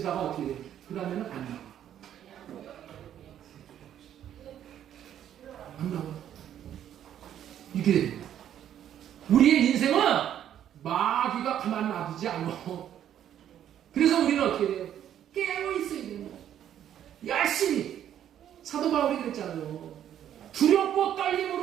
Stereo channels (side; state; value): left; quieter; 10.5 dB